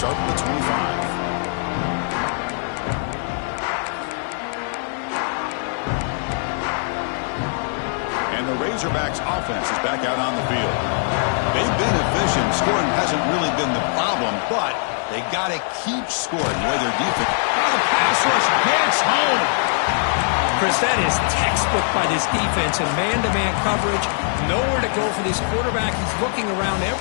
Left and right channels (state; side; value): silent; right; digital silence